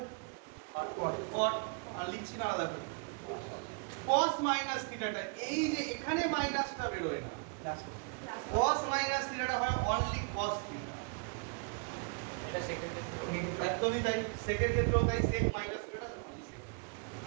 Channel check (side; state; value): left; quieter; 36.5 dB